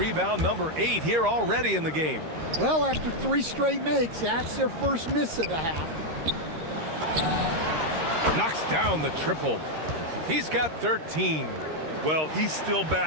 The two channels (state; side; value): late; left; 13 ms